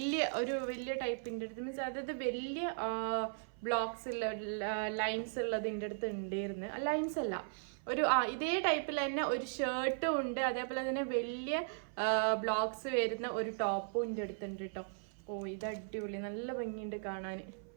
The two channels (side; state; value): left; silent; 53 dB below the other